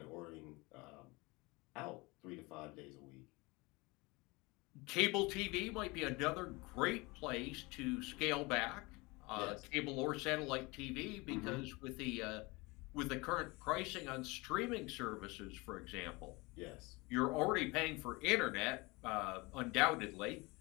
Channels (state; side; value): quieter; right; 24.7 dB